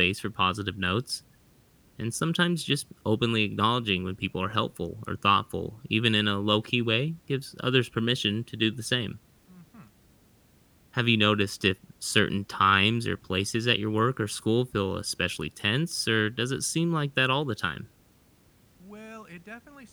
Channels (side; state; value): both; identical; correlation 1.00